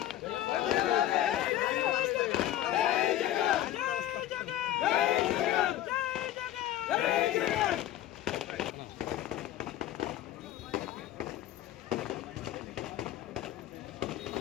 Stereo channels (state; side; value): quieter; right; 13.0 dB